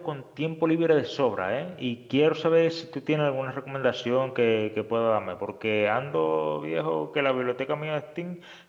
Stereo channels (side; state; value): both; identical; correlation 1.00